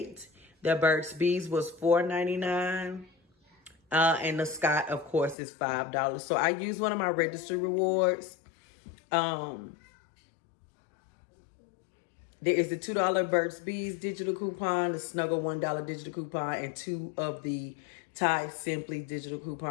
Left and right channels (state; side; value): drops out; right; at 5.4 s